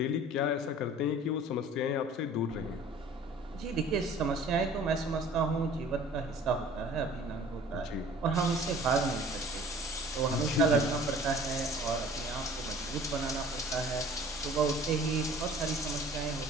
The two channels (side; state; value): both; normal; correlation 0.49